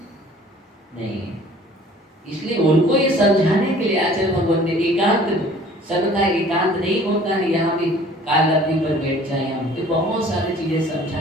नहीं। इसलिए उनको ये समझाने के लिए आचार्य भगवान ने एकांत, सबका एकांत नहीं होता है। यहाँ भी काल लब्धि पर बैठ जाए, हम तो बहुत सारी चीजें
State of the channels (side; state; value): both; normal; correlation 0.51